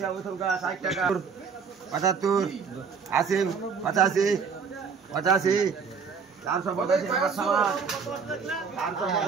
থুকা, 60 টাকা, 75, 80, 85, 85, 485 নগদ সামান,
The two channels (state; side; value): quieter; left; 5.8 dB